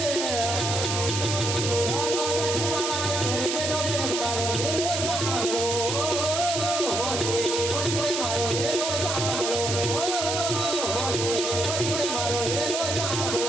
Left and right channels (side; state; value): right; noise; hiss, 2 dB below the sound